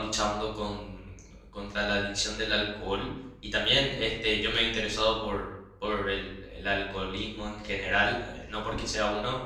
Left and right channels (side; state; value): both; identical; correlation 1.00